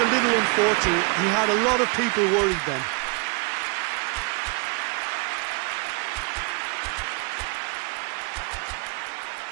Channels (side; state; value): left; quieter; 31.8 dB